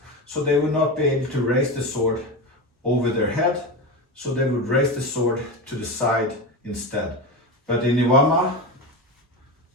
so they would not be able to raise the sword over their head, so they would raise the sword to the side instead. But in Iwama,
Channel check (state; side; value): normal; both; correlation 0.20